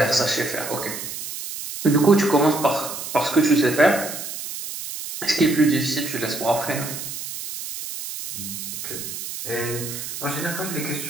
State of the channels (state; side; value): noise; right; hiss, 8 dB below the sound